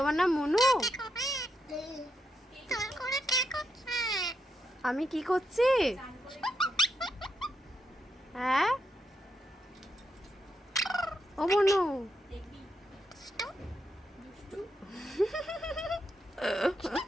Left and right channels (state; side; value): normal; both; correlation 0.82